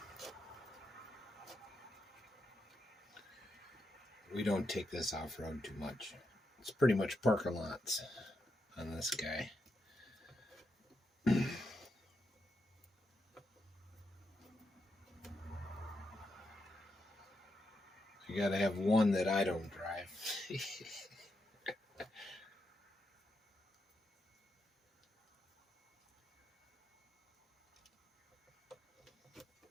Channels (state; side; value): normal; both; correlation 0.84